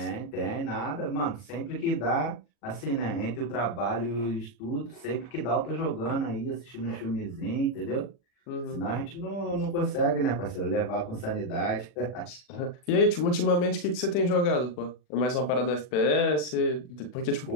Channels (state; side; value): late; right; 40 ms